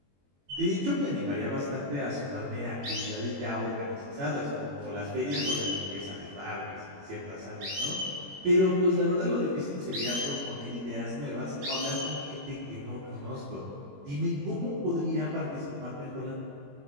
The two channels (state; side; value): late; left; 21 ms